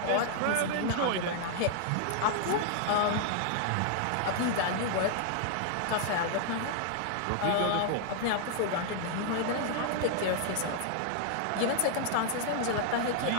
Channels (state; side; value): different; both; correlation 0.00